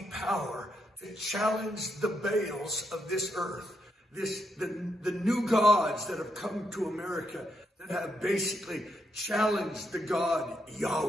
power to challenge the Baals of this earth, the new gods that have come to America that have basically challenged the God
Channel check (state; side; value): normal; both; correlation 0.80